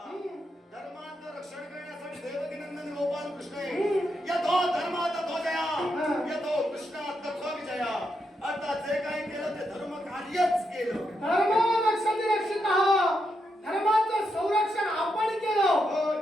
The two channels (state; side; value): normal; both; correlation 0.82